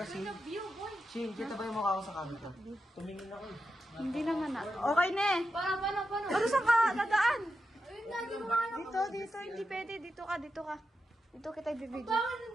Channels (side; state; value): both; normal; correlation 0.88